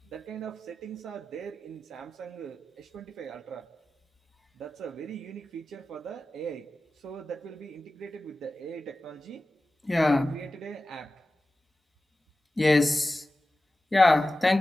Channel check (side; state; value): both; normal; correlation 0.95